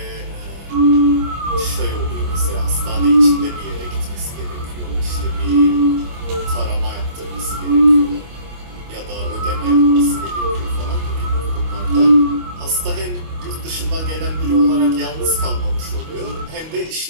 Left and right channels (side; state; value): left; late; 25 ms